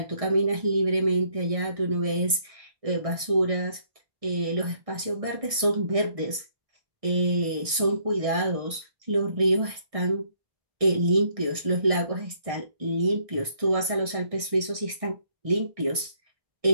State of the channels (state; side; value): late; left; 1.6 ms